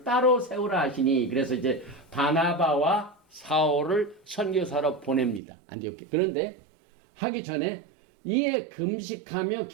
따로 세우라 하시니, 그래서 이제 바나바와 사울을 선교사로 보냅니다. 안디옥에. 그런데 하기 전에 이에 금식하며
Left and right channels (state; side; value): drops out; left; at 5.4 s